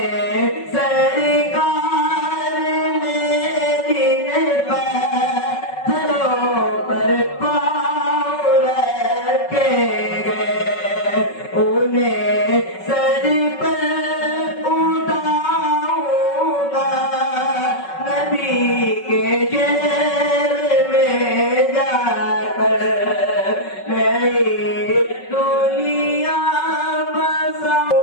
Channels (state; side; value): late; right; 5.3 ms